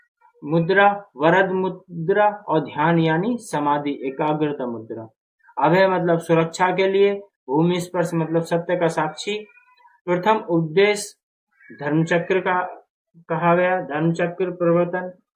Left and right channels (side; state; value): both; identical; correlation 1.00